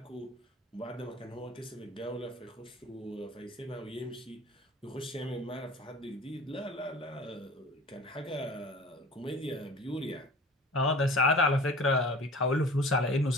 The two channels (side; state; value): both; normal; correlation 0.42